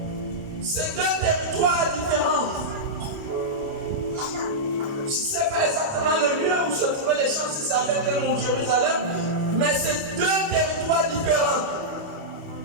C'est deux territoires différents. Je ne sais pas exactement le lieu où se trouvaient les champs, si c'est à Bethléem ou Jérusalem, mais c'est deux territoires différents.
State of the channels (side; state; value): left; late; 29 ms